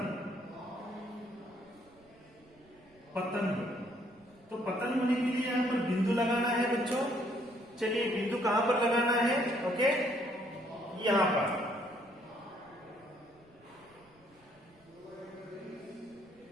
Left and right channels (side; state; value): right; noise; rumble, 30 dB below the sound